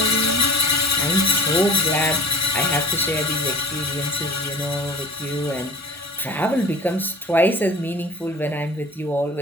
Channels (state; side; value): normal; both; correlation 0.41